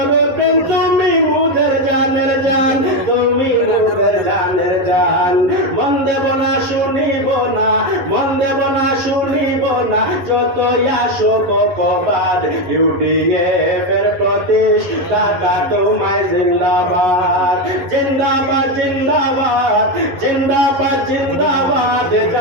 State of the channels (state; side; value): late; left; 11 ms